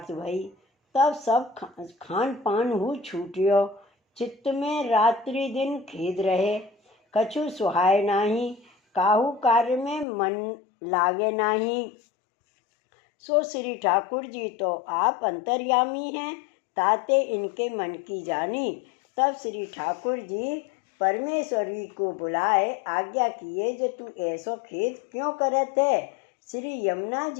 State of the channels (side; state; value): right; drops out; at 10.1 s